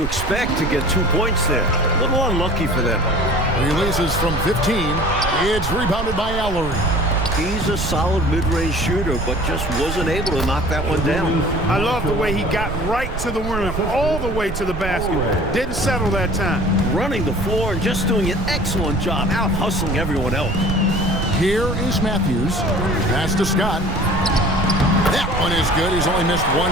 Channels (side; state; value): right; noise; rumble, 6 dB below the sound